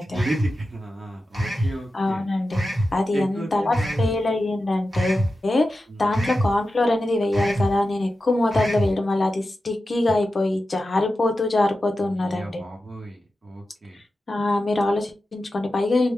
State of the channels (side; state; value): both; normal; correlation 0.92